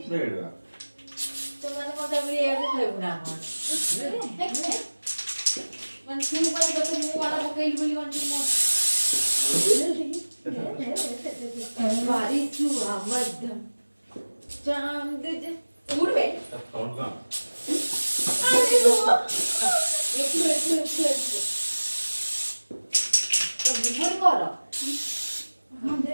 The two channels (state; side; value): inverted; both; correlation -1.00